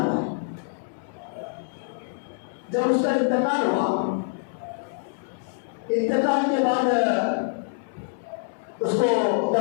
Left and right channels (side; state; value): right; silent; 61 dB below the other